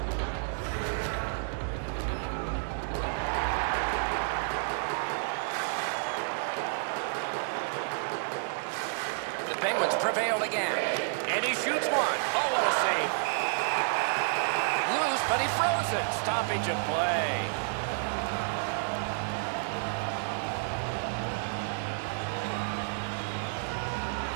The Penguins prevailed again. And he shoots one. Oh, what a save. Loose, but he froze it. Stoppage of play.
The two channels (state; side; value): silent; left; 58 dB below the other